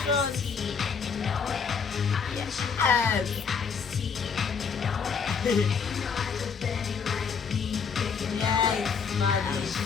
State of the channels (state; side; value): quieter; right; 6.0 dB